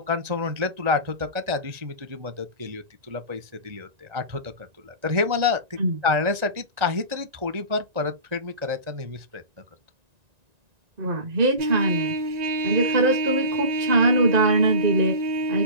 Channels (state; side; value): late; left; 1.9 ms